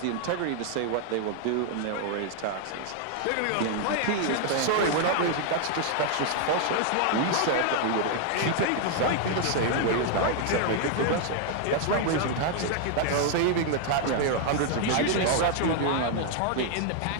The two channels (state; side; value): different; both; correlation 0.00